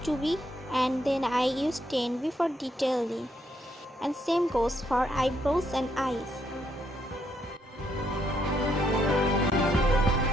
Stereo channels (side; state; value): both; normal; correlation 0.74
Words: 2B and then I use 10B for detailing. And same goes for eyebrows and eyes.